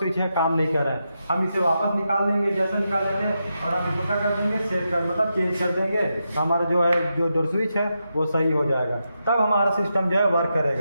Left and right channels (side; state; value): both; inverted; correlation -0.86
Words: है काम नहीं कर रहा है। हम इसे वापस निकाल देंगे जैसा निकाले थे और हम इसको क्या कर देंगे? सेट कर मतलब चेंज कर देंगे। तो हमारा जो है जो डोर स्विच है वो सही हो जाएगा, तब हमारा सिस्टम जो है वर्क